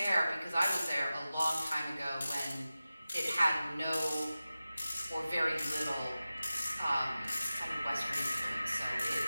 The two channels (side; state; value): both; inverted; correlation -0.95